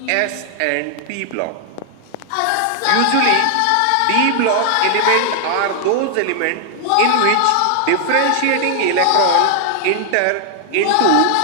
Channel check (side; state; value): both; different; correlation 0.00